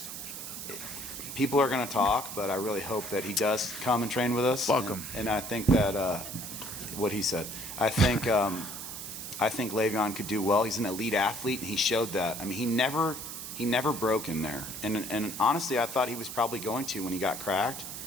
people are going to talk, but I really hope that he does come and train with us. Welcome. And I think that what he said. I think Le'Veon could do well. He's an elite athlete, and he showed that. I mean, he never broke in there. And honestly, I thought he was probably going to when he got cracked.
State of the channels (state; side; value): noise; right; hiss, 8 dB below the sound